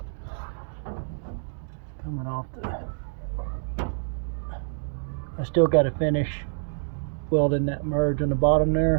Coming off I still got to finish welding that merge on the bottom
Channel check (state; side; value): silent; left; digital silence